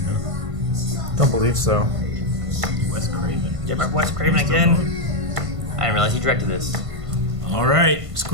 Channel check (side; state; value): left; late; 1.5 ms